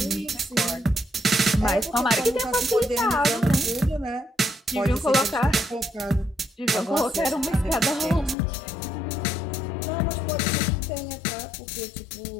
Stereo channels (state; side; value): drops out; right; at 8.3 s